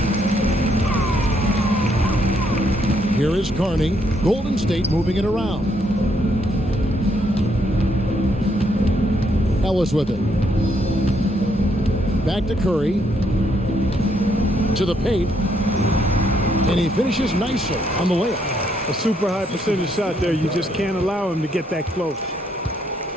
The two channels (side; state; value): both; normal; correlation 0.73